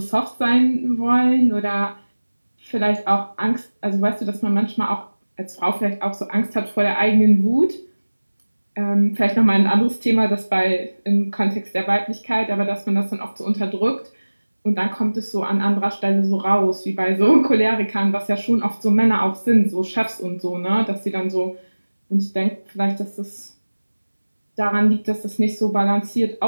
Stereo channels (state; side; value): inverted; both; correlation -1.00